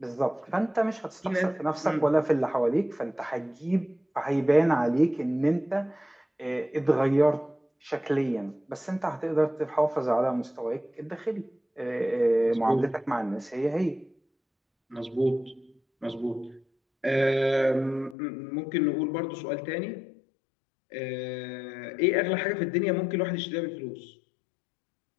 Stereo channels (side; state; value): right; drops out; at 18.2 s